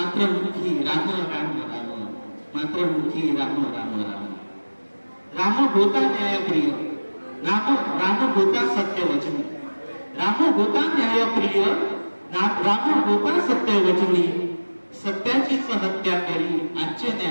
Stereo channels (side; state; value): both; inverted; correlation -1.00